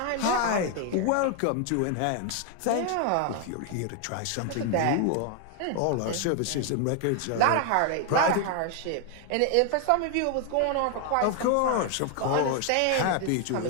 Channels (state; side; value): different; both; correlation 0.00